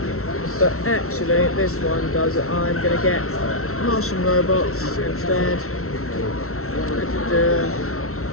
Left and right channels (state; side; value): late; right; 0.63 ms